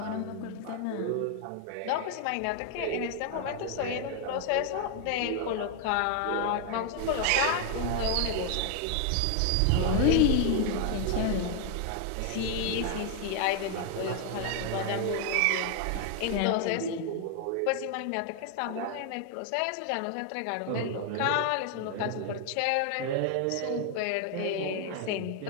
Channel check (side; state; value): both; different; correlation 0.00